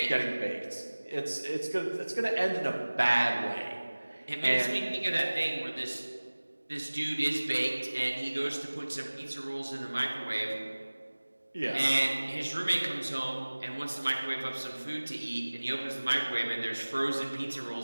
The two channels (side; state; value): both; inverted; correlation -1.00